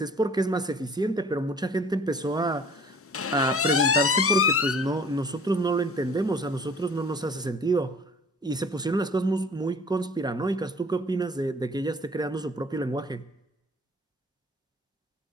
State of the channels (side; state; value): both; normal; correlation 0.49